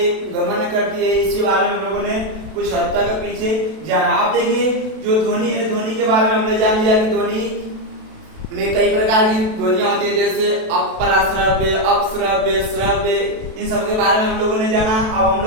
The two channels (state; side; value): late; left; 32 ms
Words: गमन करती है, इसके बारे में हम लोगों ने कुछ हद तक पीछे जाना। आप देखिए जो ध्वनि है, ध्वनि के बारे में हमने जान लिया कि ध्वनि में कई प्रकार की ध्वनियां होती है, जैसे अपराश्रव्य, अपश्रव्य, श्रव्य, इन सब के बारे में हम लोगों ने जाना। अब हम